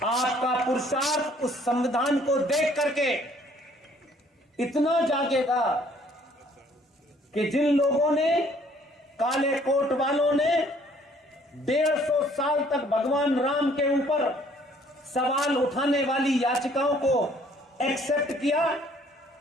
आपका पुरुषार्थ उस संविधान को देख करके इतना जागेगा कि जिन लोगों ने, काले कोट वालों ने 150 साल तक भगवान राम के ऊपर सवाल उठाने वाली याचिकाओं को एक्सेप्ट किया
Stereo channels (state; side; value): normal; both; correlation 0.60